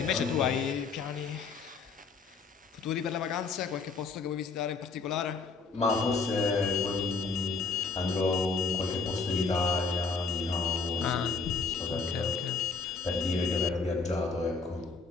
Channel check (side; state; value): right; quieter; 4.5 dB